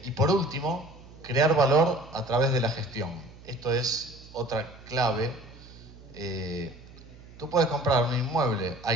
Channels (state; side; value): noise; right; hum, 20 dB below the sound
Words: por último, crear valor a través de la gestión. Esto es otra clave. Tú puedes comprar un inmueble